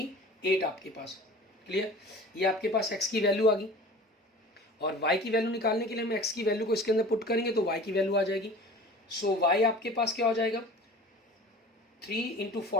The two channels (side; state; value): both; normal; correlation 0.41